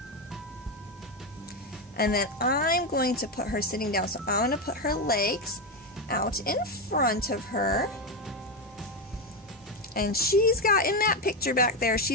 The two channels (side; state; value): both; normal; correlation 0.10